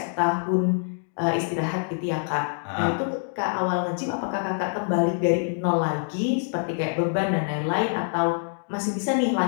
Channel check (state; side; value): silent; right; digital silence